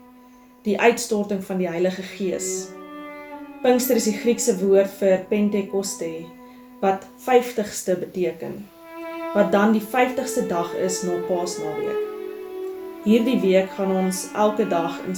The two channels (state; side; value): identical; both; correlation 1.00